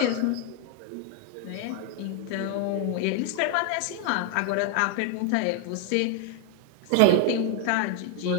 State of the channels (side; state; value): both; different; correlation 0.01